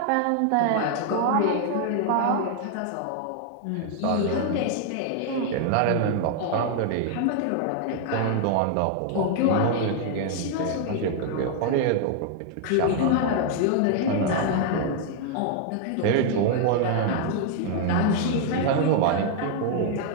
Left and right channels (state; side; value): different; both; correlation 0.00